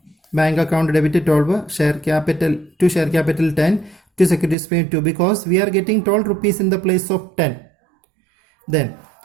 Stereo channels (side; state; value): left; drops out; at 4.5 s